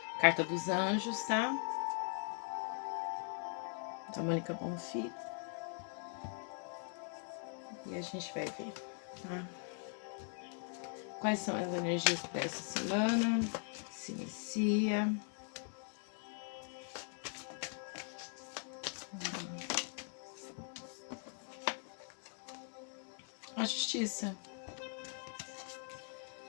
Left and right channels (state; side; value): silent; right; 50 dB below the other